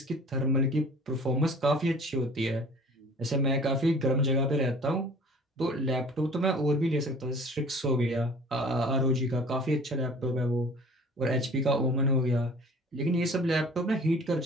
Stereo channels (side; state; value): both; normal; correlation 0.47